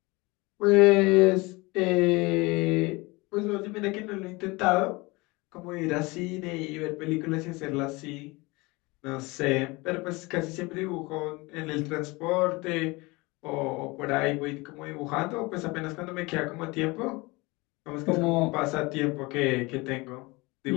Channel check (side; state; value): right; quieter; 24.1 dB